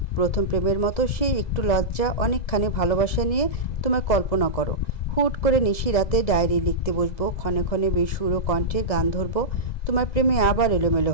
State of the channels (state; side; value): late; right; 1.9 ms